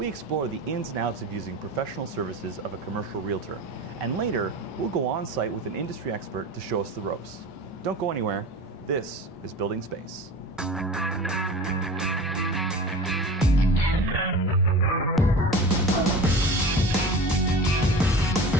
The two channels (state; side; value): normal; both; correlation 0.35